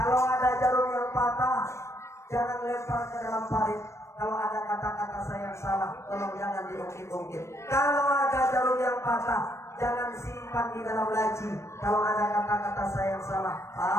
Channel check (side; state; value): right; late; 0.13 ms